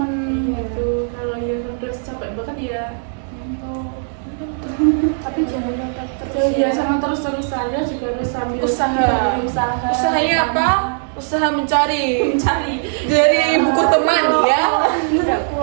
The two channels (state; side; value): silent; left; digital silence